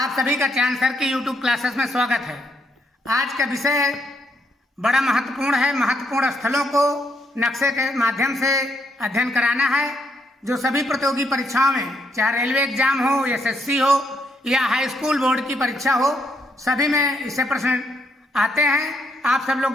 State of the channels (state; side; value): normal; both; correlation 0.75